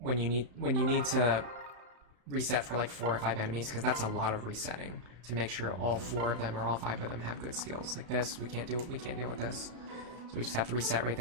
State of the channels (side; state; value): left; late; 34 ms